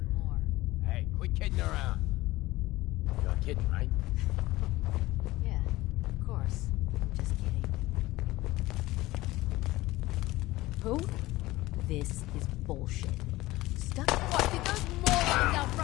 Hey, quit kidding around. You're kidding, right? Yeah, of course. I'm just kidding. Who? This is bullshit. Stuck. What? Did those morons out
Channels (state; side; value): quieter; right; 18.4 dB